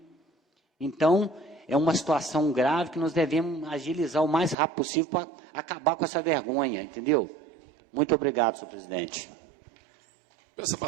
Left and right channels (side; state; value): left; drops out; at 4.5 s